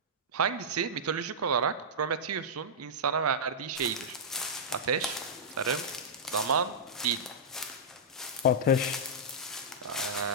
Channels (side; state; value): both; normal; correlation -0.11